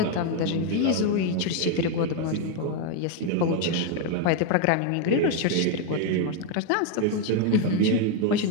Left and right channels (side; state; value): both; different; correlation 0.01